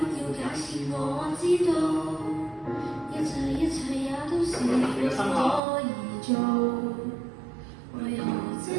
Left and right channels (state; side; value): drops out; left; at 5.6 s